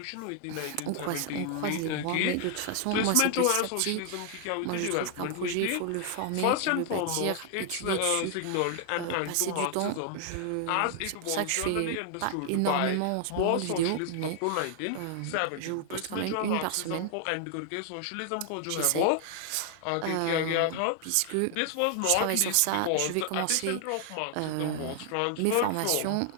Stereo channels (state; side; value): different; both; correlation 0.00